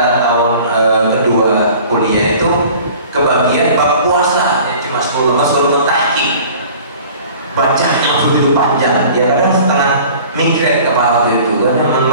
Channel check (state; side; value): inverted; both; correlation -0.46